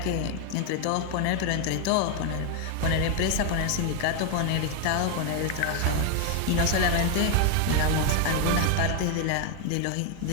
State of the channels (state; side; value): different; both; correlation 0.01